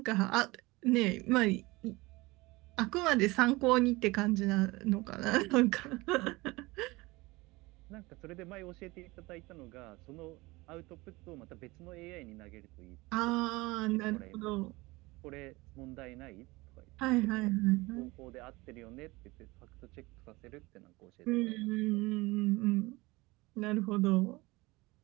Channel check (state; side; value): quieter; left; 22.3 dB